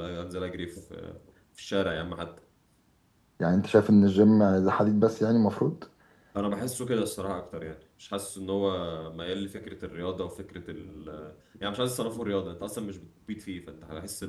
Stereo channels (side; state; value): both; identical; correlation 1.00